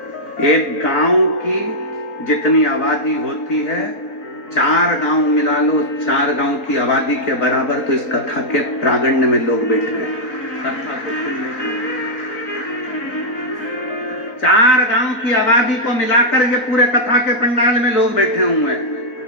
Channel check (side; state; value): right; late; 3.9 ms